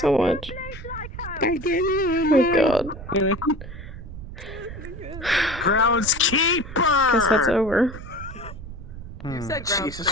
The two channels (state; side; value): noise; right; rumble, 12 dB below the sound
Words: much. Oh god. Groundskeeper. Guess that's over. You said Jesus